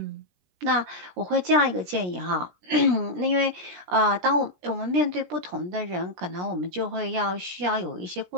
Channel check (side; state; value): left; late; 17 ms